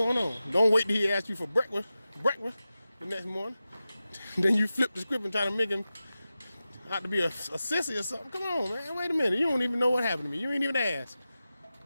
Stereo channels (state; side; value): inverted; both; correlation -0.94